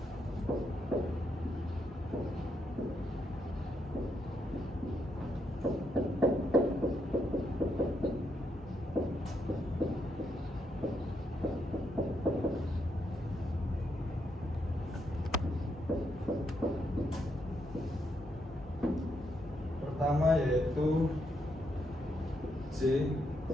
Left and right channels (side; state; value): both; normal; correlation 0.79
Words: Pertama yaitu J